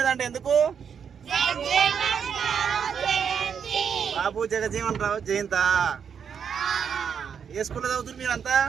ఎందుకు? బాబు జగజీవన్ రావు జయంతా. ఏ స్కూల్లో చదువుతున్నారు మీరంతా?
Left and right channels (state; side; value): quieter; left; 7.2 dB